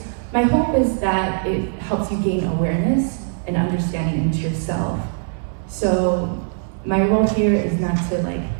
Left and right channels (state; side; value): silent; left; digital silence